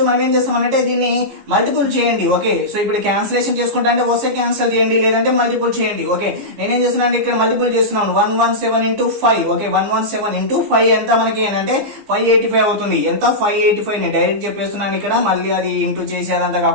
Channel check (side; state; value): left; late; 15 ms